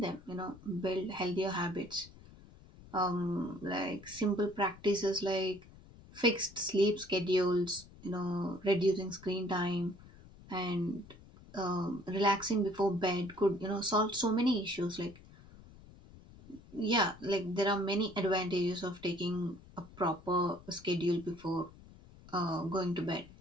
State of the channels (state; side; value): noise; left; rumble, 21 dB below the sound